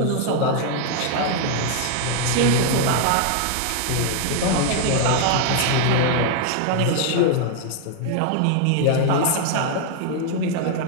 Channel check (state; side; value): different; both; correlation 0.00